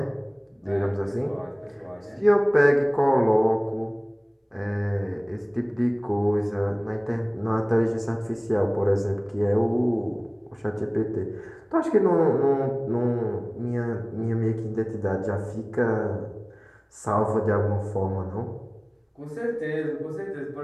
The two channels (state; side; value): identical; both; correlation 1.00